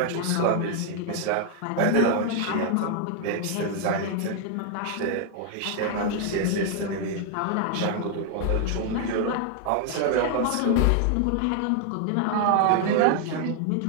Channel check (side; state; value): both; different; correlation 0.00